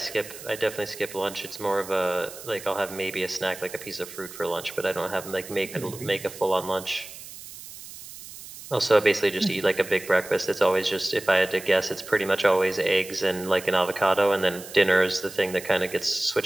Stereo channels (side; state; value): right; noise; hiss, 14 dB below the sound